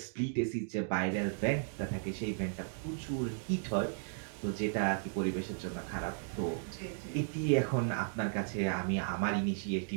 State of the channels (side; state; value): left; silent; digital silence